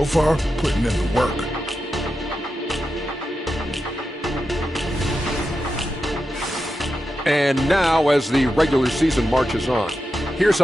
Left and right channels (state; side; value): normal; both; correlation 0.89